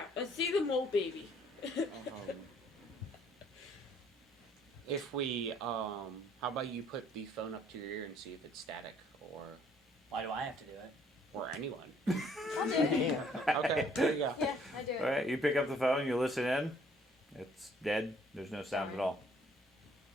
let's see the mole baby. If we, how about you put the phone up to your ear and see if it's static, Why do I have to do it? or anyone. I'll do it. Okay, there you go. Yeah, I do it. All right, you pick up the phone, you listen in. It's dead. There's no sound at all.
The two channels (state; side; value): normal; both; correlation 0.62